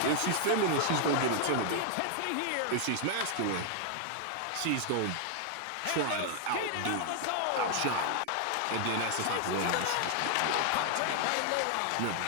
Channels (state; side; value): different; both; correlation 0.00